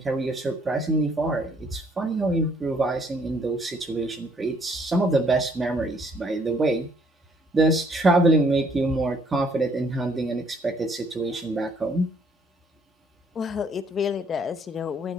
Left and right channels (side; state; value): both; normal; correlation 0.65